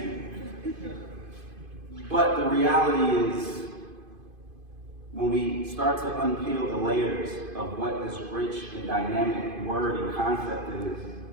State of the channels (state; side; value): late; left; 2.5 ms